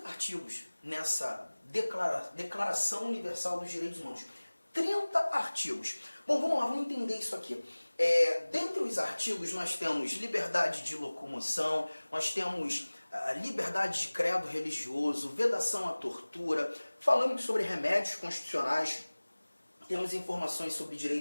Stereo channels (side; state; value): both; inverted; correlation -1.00